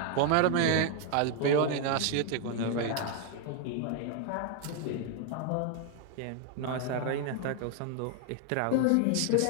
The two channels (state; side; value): different; both; correlation 0.01